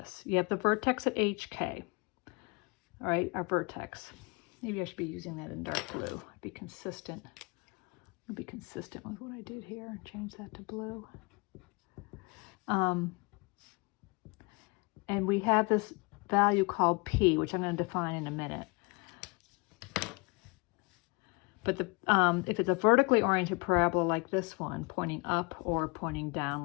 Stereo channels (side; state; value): right; quieter; 28.9 dB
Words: You have the vertex at HK, all right, our vertex. Maybe I should be using that in dark blue. Be consistent. I'll be consistent with what I did here and change that to blue. And we have this value called P, which I'm going to define in a minute. But if it's a vertically oriented parabola like this one, pointing up or pointing